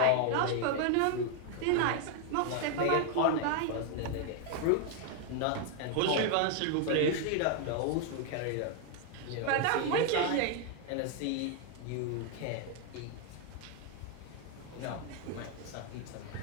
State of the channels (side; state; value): both; different; correlation 0.00